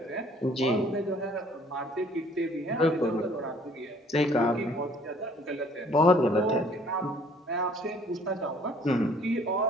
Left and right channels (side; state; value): both; normal; correlation 0.57